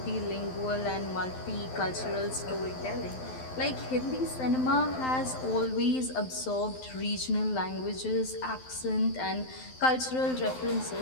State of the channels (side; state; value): right; late; 12 ms